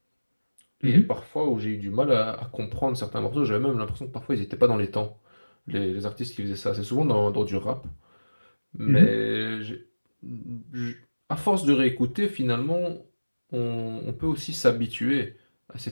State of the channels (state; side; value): inverted; both; correlation -1.00